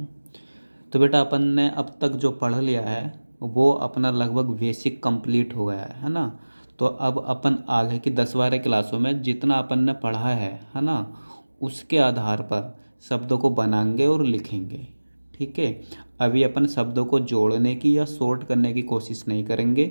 तो बेटा अपन ने अब तक जो पढ़ लिया है वो अपना लगभग बेसिक कंप्लीट हो गया है ना। तो अब अपन आगे की 10-12 क्लासों में जितना अपन ने पढ़ा है ना, उसके आधार पर शब्दों को बनाएंगे और लिखेंगे। ठीक है। अभी अपन शब्दों को जोड़ने की या शॉर्ट करने की कोशिश नहीं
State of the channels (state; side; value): inverted; both; correlation -1.00